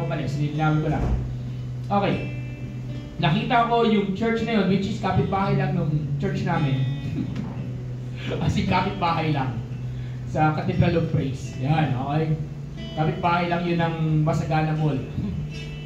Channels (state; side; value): identical; both; correlation 1.00